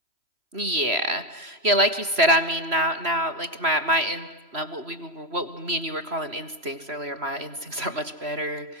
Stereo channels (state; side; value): late; left; 3.0 ms